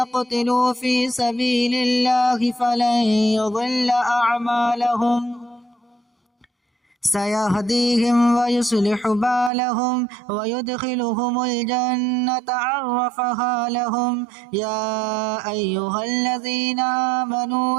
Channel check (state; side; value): drops out; left; at 9.5 s